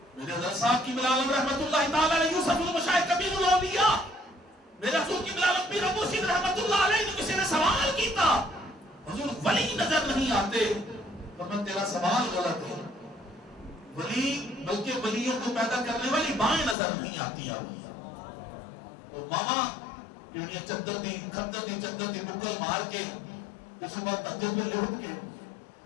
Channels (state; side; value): drops out; right; at 16.8 s